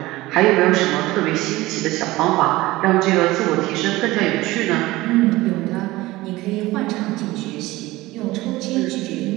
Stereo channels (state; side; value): quieter; left; 18.9 dB